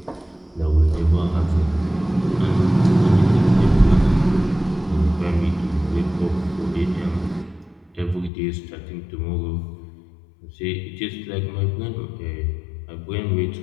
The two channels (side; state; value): right; drops out; at 8.3 s